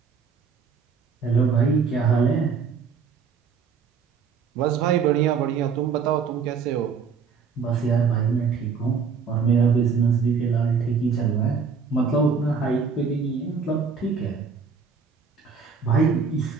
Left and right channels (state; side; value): quieter; left; 5.7 dB